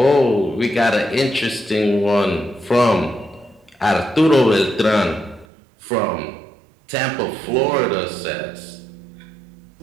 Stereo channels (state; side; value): drops out; left; at 5.5 s